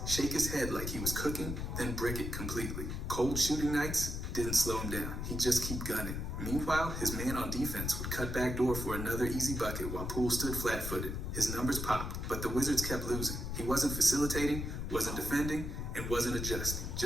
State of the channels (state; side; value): noise; left; rumble, 4 dB below the sound